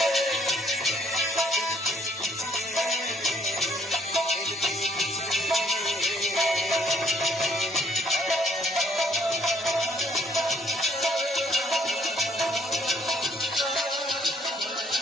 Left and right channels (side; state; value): both; normal; correlation 0.65